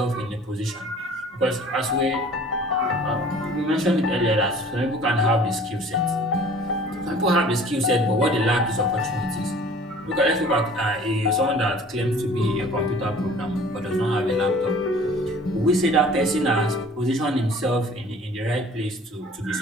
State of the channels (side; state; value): both; normal; correlation 0.49